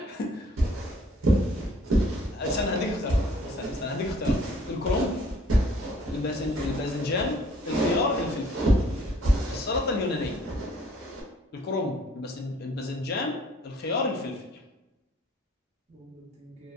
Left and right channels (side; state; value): both; normal; correlation 0.58